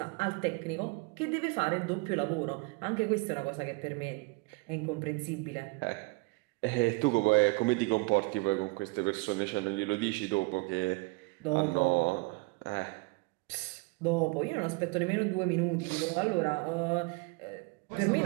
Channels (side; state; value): left; quieter; 26.8 dB